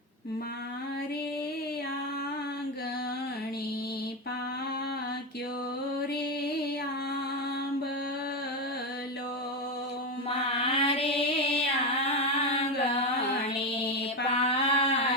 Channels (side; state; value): both; normal; correlation 0.13